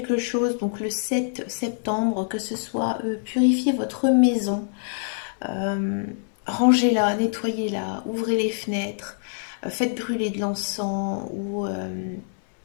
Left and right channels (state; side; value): silent; right; digital silence